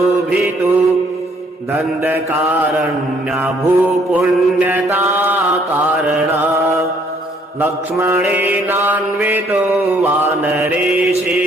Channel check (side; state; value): both; normal; correlation 0.64